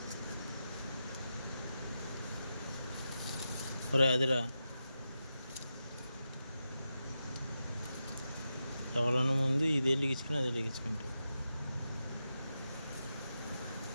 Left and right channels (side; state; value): both; inverted; correlation -0.89